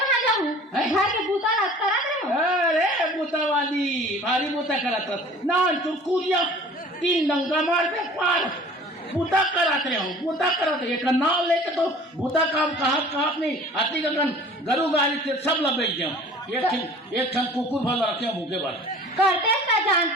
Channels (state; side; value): normal; both; correlation 0.46